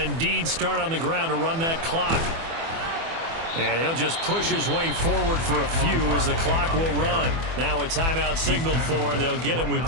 start on the ground to run that clock. And he'll just push his way forward for a few as the clock will run. Now a timeout signaled for, and they'll get it with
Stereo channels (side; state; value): left; late; 24 ms